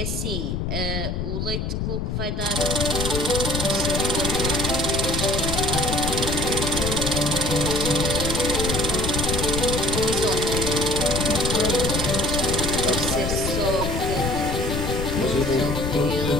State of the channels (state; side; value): noise; left; rumble, 2 dB below the sound